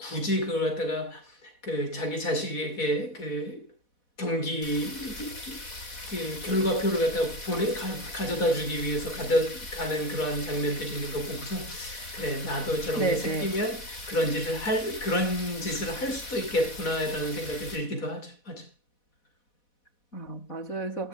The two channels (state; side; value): late; right; 4.1 ms